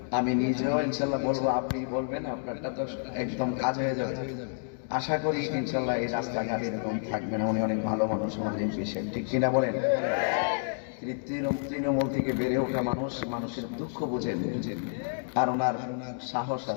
আমি নিজেও ইনশাল্লাহ বলবো, আপনি বলবেন, আপনারটা তো একদম কাজ হয়ে যাবে। আশা করি ইনশাল্লাহ এই রাস্তাঘাট এরকম থাকবে না। উনি অনেক ভালো মানুষ, আমাদের এমপি সাহেব, ঠিক কিনা বলেন? তিনি তৃণমূল থেকে বেড়ে ওঠা মানুষ, মানুষের দুঃখ বুঝেন, আর ওনার সাহস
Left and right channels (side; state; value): right; silent; digital silence